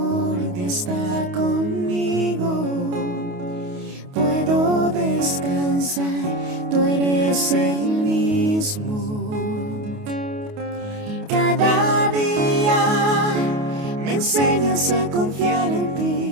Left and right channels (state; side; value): late; left; 28 ms